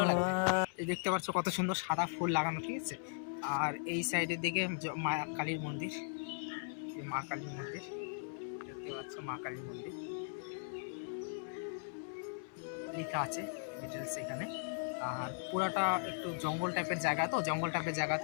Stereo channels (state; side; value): silent; right; 52 dB below the other